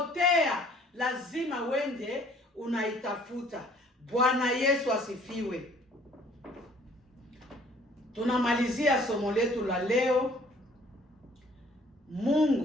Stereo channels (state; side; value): normal; both; correlation 0.57